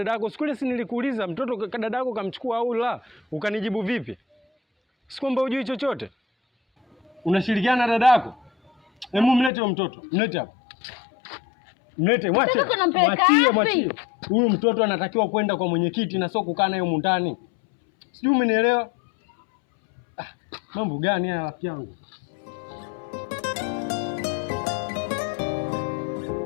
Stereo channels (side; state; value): right; drops out; at 9.5 s